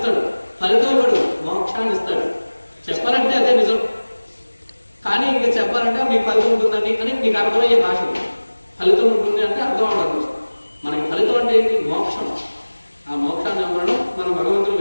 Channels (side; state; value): both; inverted; correlation -1.00